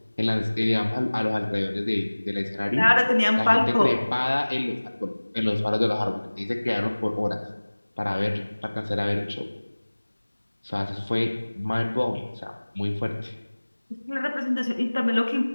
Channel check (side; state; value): both; inverted; correlation -1.00